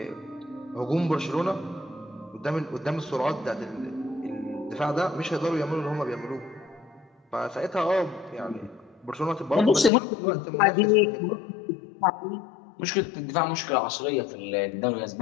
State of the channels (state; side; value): drops out; right; at 9.9 s